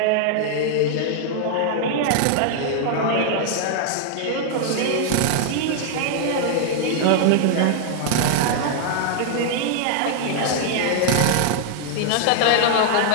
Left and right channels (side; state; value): both; different; correlation 0.00